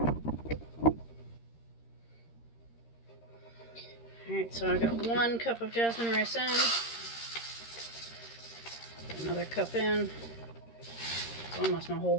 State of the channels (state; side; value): late; right; 13 ms